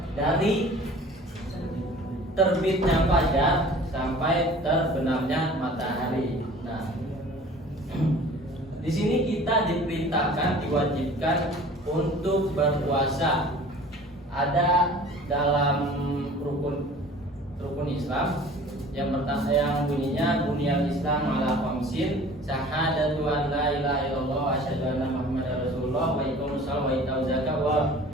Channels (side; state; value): both; normal; correlation 0.46